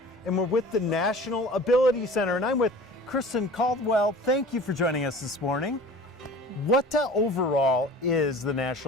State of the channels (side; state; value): both; normal; correlation 0.42